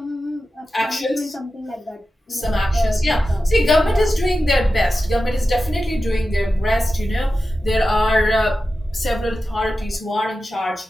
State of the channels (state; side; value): normal; both; correlation 0.93